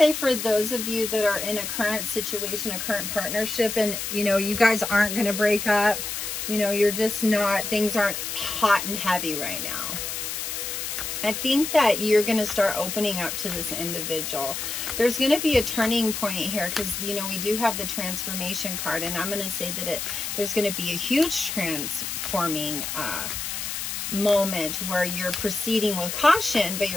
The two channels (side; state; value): left; noise; hiss, 4 dB below the sound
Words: for those of you that are in a current situation, a current partnership, and, you know, you guys aren't going to break up. You know, you're just not, things aren't hot and heavy right now. I think that you're going to start opening up to this individual. There's going to be a turning point here because, you know, we do have the transformation card. And I'm going to say that there's going to be a huge transforming moment where you're proceeding with caution, but